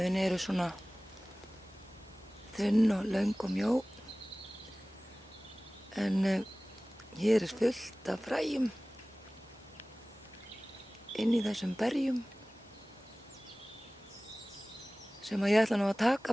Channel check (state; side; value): normal; both; correlation 0.98